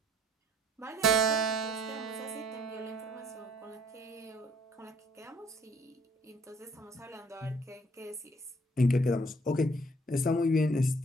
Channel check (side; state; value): both; normal; correlation 0.61